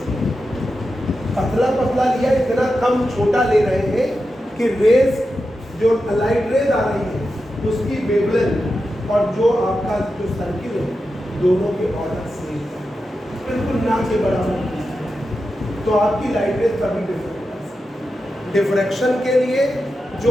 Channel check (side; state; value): both; normal; correlation 0.90